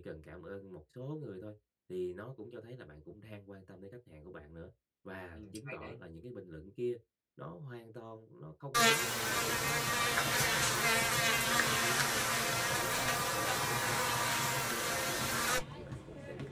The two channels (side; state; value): both; identical; correlation 1.00